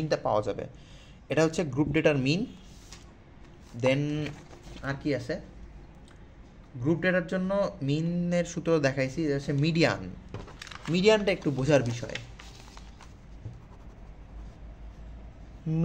পাওয়া যাবে। এটা হচ্ছে গ্রুপ ডেটার মিন। দেন আর কি আছে, গ্রুপ ডেটার জন্য মিনের সূত্র দেখাইছি, এটা হচ্ছে মিডিয়ান। মিডিয়ানটা একটু বোঝার বিষয়।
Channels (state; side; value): identical; both; correlation 1.00